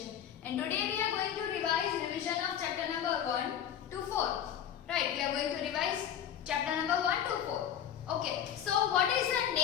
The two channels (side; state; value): right; quieter; 9.5 dB